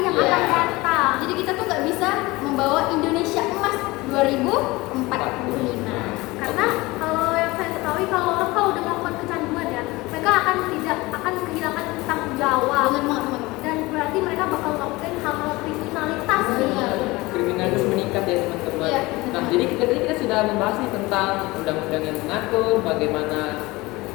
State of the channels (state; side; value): quieter; right; 21.6 dB